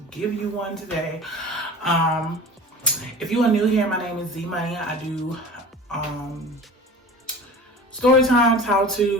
give you one today. If you are new here, my name is Z Money. I do story times, how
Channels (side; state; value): both; normal; correlation 0.37